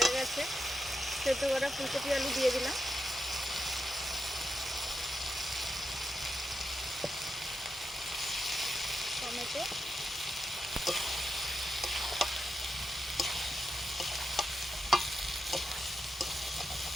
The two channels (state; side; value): normal; both; correlation 0.87